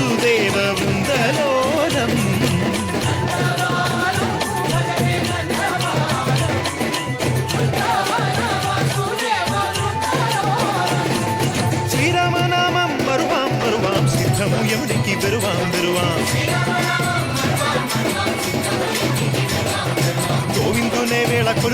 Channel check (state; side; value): identical; both; correlation 1.00